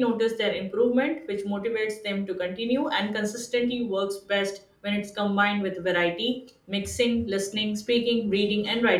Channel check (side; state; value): both; identical; correlation 1.00